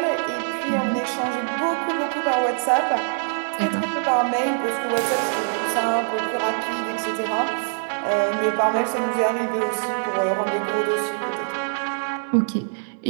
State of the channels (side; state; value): left; silent; 63 dB below the other